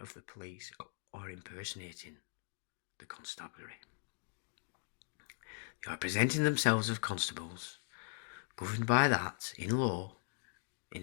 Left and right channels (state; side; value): silent; right; digital silence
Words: the police are impersonating the constabulary. They are presenting themselves as constables, governed by that in law, in